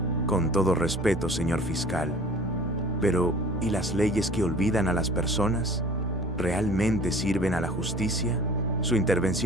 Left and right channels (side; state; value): both; normal; correlation 0.46